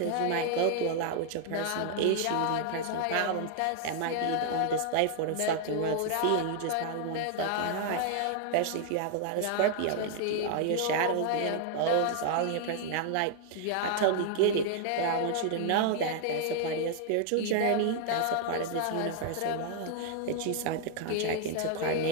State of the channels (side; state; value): both; different; correlation 0.00